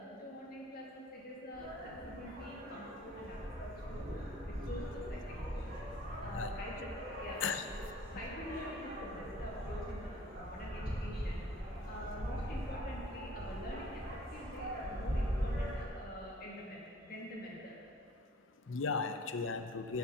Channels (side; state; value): both; normal; correlation 0.51